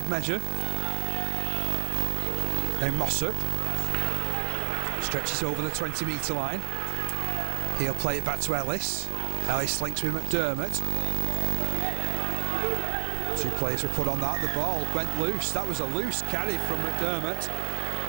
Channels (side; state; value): left; silent; digital silence